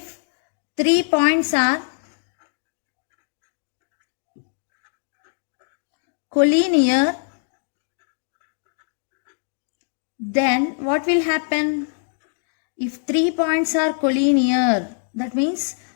points are collinear, then what will happen? If 3 points are collinear, that means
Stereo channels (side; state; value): right; silent; 63 dB below the other